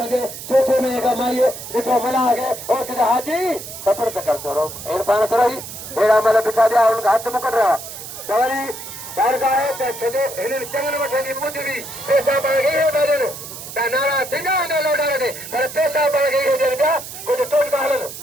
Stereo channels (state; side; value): noise; right; hiss, 11 dB below the sound